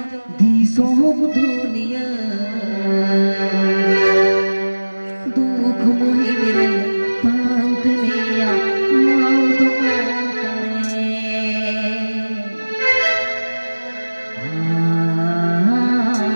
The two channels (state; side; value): inverted; both; correlation -1.00